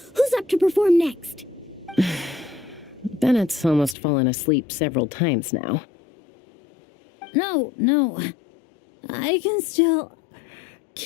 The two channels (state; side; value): drops out; right; at 4.0 s